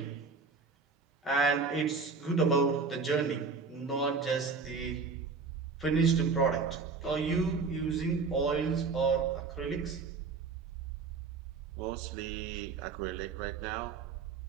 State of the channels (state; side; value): quieter; left; 4.8 dB